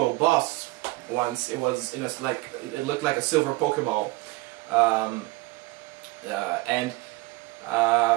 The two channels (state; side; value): quieter; left; 21.8 dB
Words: Boss once. It was in a, it looked like a silver Pokeball,